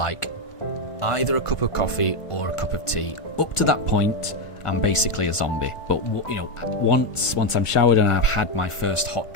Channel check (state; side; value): late; right; 1.5 ms